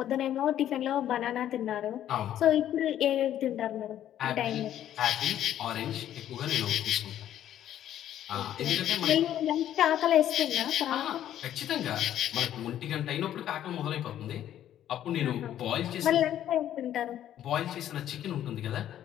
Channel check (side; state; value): right; quieter; 11.4 dB